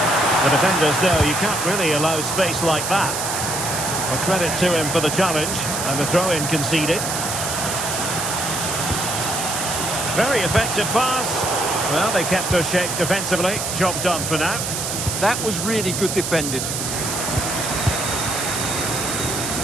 The defenders know you can't really allow space like that. Well, credit to him for the challenge, and the throw-in conceded. Very effective pass. Well, they kept their shape defensively. Job done for now. That was really good defending.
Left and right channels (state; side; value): noise; right; hiss, 3 dB below the sound